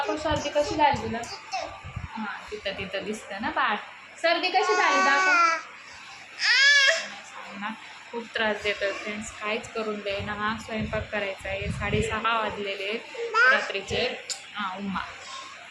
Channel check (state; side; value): identical; both; correlation 1.00